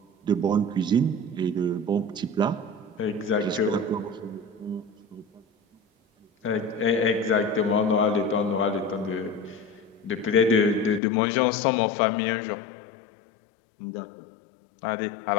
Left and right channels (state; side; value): drops out; right; at 11.0 s